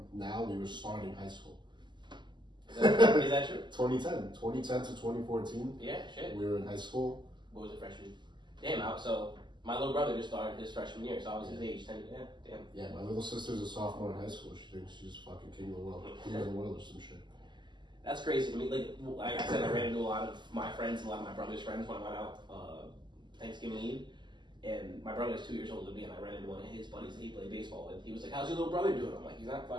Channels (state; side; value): late; left; 0.22 ms